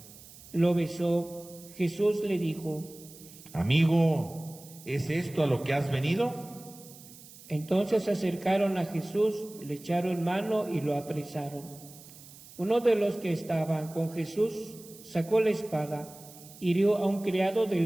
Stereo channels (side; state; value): right; noise; hiss, 19 dB below the sound